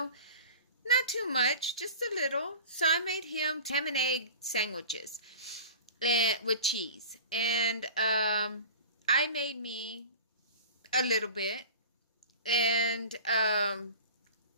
Not too much, just a little. So I made him ham and egg sandwiches with cheese. And I made me a little bit. And I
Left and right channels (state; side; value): inverted; both; correlation -0.37